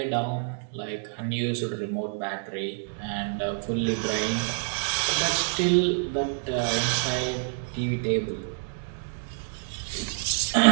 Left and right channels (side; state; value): left; silent; digital silence